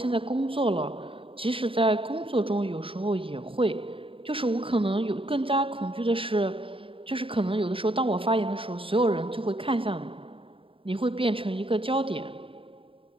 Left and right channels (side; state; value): left; late; 0.26 ms